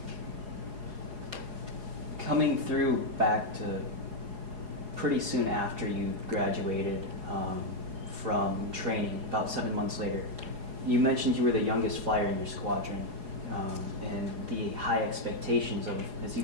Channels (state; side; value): late; left; 4.8 ms